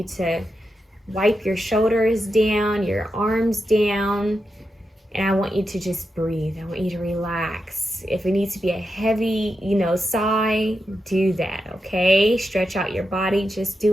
to wipe your shoulders down, your arms down, and I want you to just breathe. I want you to relax. If it needs to be a heavy, sigh, do that, okay? Stretch out your body. Just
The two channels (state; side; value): normal; both; correlation 0.87